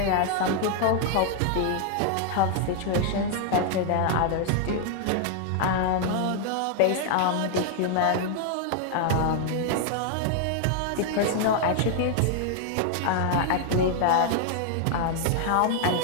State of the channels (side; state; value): both; different; correlation 0.00